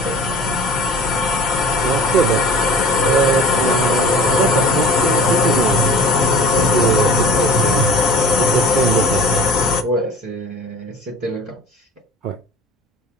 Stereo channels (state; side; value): normal; both; correlation 0.42